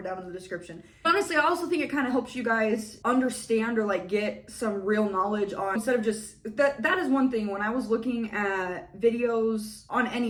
down in the description. Honestly, I also think it kind of helps you guys understand or like get some real knowledge on, instead of just that is one thing. When I was looking at videos on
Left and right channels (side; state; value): both; identical; correlation 1.00